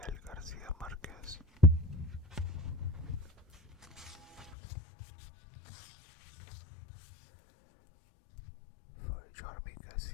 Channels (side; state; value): right; drops out; at 4.5 s